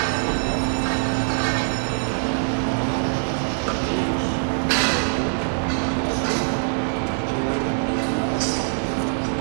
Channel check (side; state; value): left; silent; digital silence